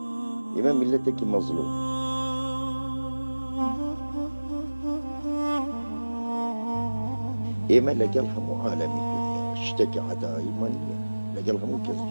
إمام ملتك مظلوم. إما لقلها معالم الدنيا اشتكي عداي منيا لقلها ممكن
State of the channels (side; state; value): both; inverted; correlation -1.00